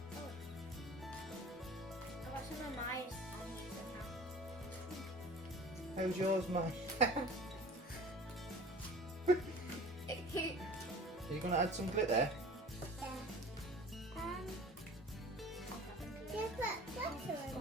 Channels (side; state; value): both; normal; correlation 0.43